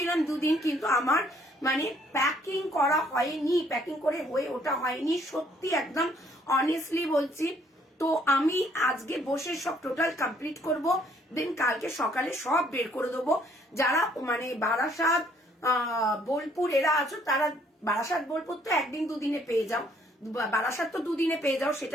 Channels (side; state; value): both; normal; correlation 0.64